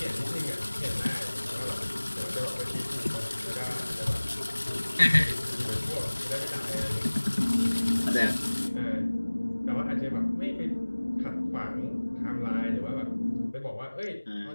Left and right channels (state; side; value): inverted; both; correlation -1.00